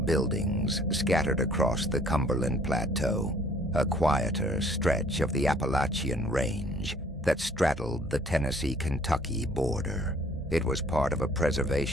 buildings scattered across the Cumberland Plateau, a quieter stretch of the Appalachian range that straddled the Tennessee-Kentucky border. It was part of a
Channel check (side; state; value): both; normal; correlation 0.58